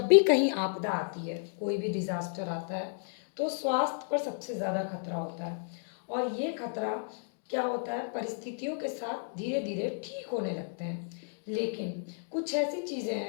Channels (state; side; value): silent; right; digital silence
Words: भी कहीं आपदा आती है, कोई भी डिजास्टर आता है, तो स्वास्थ्य पर सबसे ज़्यादा खतरा होता है। और ये खतरा क्या होता है, परिस्थितियों के साथ धीरे धीरे ठीक होने लगते हैं। लेकिन कुछ ऐसी चीज़ें